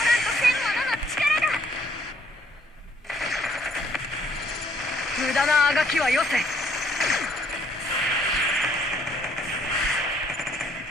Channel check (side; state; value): both; normal; correlation 0.64